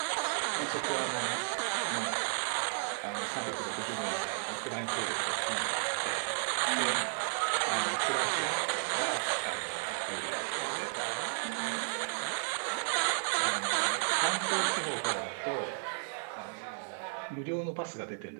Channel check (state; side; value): silent; left; 55 dB below the other